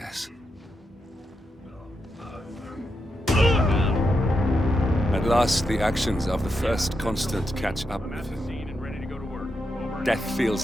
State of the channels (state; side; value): normal; both; correlation 0.85